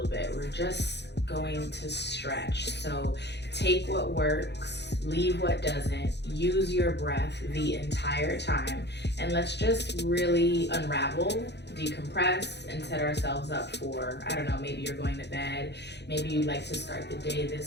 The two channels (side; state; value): right; late; 0.50 ms